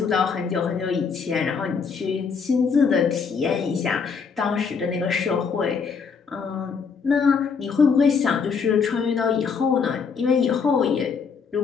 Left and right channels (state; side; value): quieter; right; 5.7 dB